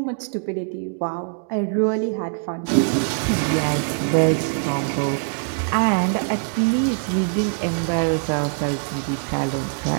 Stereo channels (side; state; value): left; silent; digital silence